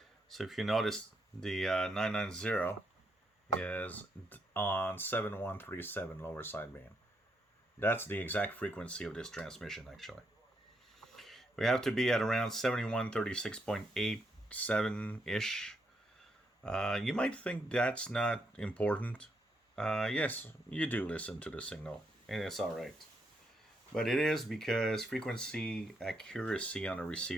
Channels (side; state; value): both; normal; correlation 0.78